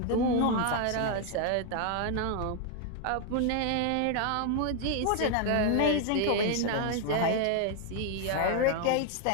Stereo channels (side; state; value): both; different; correlation 0.01